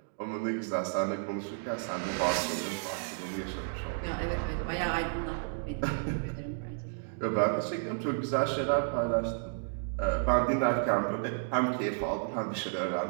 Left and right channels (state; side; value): silent; left; digital silence